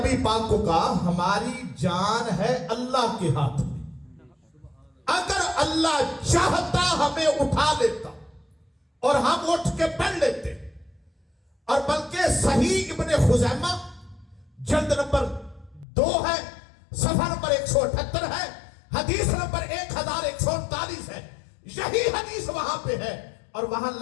پاک کو کہا ہماری جان ہے اللہ کے ہاتھ میں، اگر اللہ چاہتا ہمیں اٹھا لیتا اور ہم اٹھ کے پڑھ لیتے، اور بلکہ صحیح ابن خزیمہ جلد نمبر 2 ہے، صفحہ نمبر 178 ہے، حدیث نمبر 1139 ہے، یہی حدیث وہاں پہ ہے، اور وہاں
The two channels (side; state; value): right; drops out; at 15.9 s